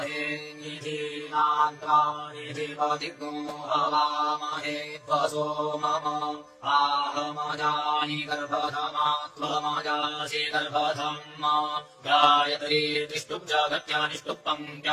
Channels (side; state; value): both; identical; correlation 1.00